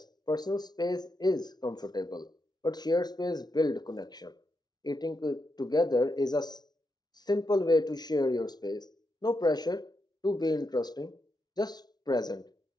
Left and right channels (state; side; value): late; right; 0.19 ms